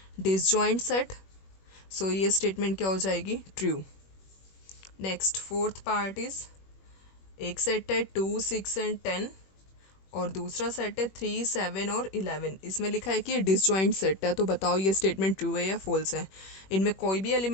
डिसजॉइंट सेट। सो ये स्टेटमेंट क्या हो जाएगी, true. Next fourth part is, एक सेट है 2 6 and 10 और दूसरा सेट है 3 7 और 11। इसमें लिखा है कि ये डिसजॉइंट सेट है, तो बताओ ये स्टेटमेंट ट्रू है या फॉल्स है। इनमें कोई भी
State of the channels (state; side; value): late; right; 21 ms